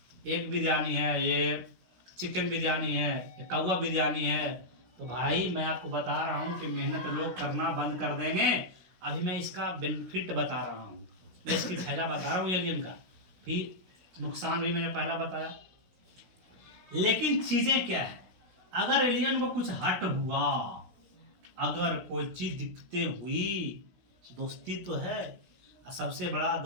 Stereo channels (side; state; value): left; late; 16 ms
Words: एग बिरयानी है, ये चिकन बिरयानी है, ये कौवा बिरयानी है। तो भाई मैं आपको बता रहा हूँ कि मेहनत लोग करना बंद कर देंगे। अभी मैं इसका बेनिफिट बता रहा हूँ, मैं इसकी फायदा बता रहा हूँ एलियन का, फिर नुकसान भी मैंने पहला बताया। लेकिन चीजें क्या है, अगर एलियन को कुछ हट हुआ, अगर कोई चीज दिखते हुई, दोस्ती तो है, सबसे बड़ा